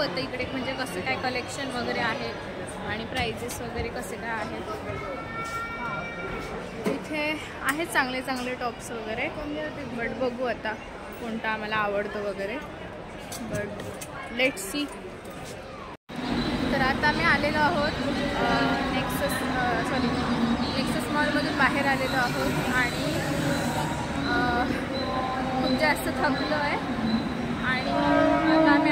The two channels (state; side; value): identical; both; correlation 1.00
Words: इकडे म्हणजे कसं काय कलेक्शन वगैरे आहे आणि प्राइजेस वगैरे कसे काय आहेत. इथे आहेत चांगले चांगले टॉप्स वगैरे, बट बघू आता कोणता आम्हाला आवडतं वगैरे. But let's see. तर आता आम्ही आलेलो आहोत नेक्सस मॉलमधून बाहेर आलेलो आहोत आणि खूप जास्त थकलो आहे आणि आता आम्ही